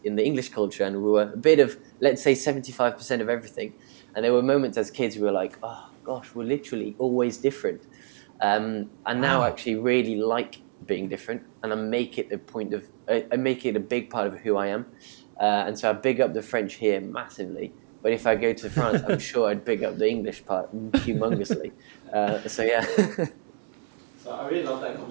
in the English culture, and we were a bit of, let's say, 75% of everything. And there were moments as kids we were like, oh gosh, we're literally always different. And now I actually really like being different, and I make it I make it a big part of who I am, and so I big up the French here massively. But if I go to France, I'm sure I'd big up the English part humongously. So yeah. So I really love that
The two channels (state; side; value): silent; left; digital silence